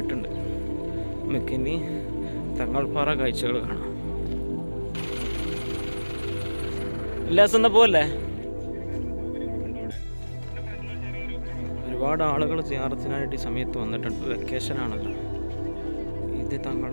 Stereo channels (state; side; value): inverted; both; correlation -1.00